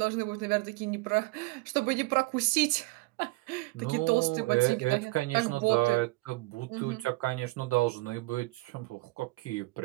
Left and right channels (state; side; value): quieter; left; 22.5 dB